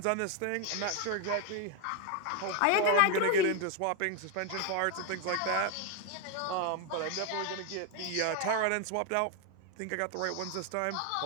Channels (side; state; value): both; different; correlation 0.01